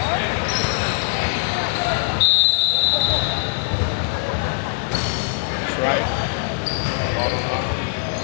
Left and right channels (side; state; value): right; silent; digital silence